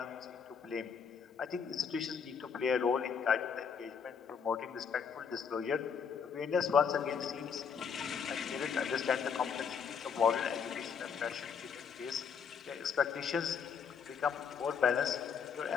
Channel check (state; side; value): quieter; right; 6.6 dB